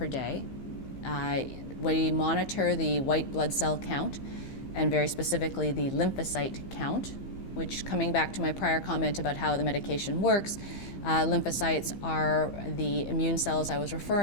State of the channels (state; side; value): late; right; 15 ms